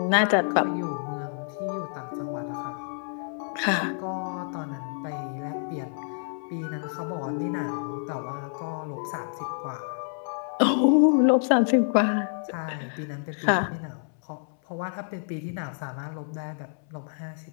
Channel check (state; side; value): silent; right; 59 dB below the other